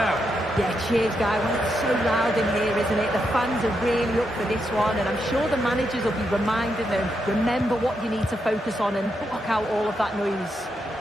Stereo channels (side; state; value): both; normal; correlation 0.82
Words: Yeah, cheers, Guy. Well, it's so loud in here, isn't it? The fans are really up for this one, and I'm sure the managers will be reminding them, remember what you need to focus on and block out all of that noise.